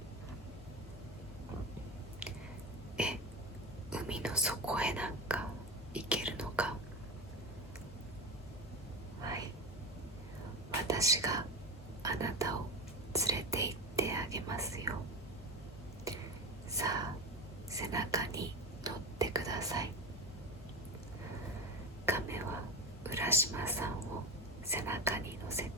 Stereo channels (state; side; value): normal; both; correlation 0.24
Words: 海の底へなんか行けるのか？はい、私があなたを連れて行ってあげますよ。さあ、背中に乗ってください。亀は浦島さんを背中に乗せ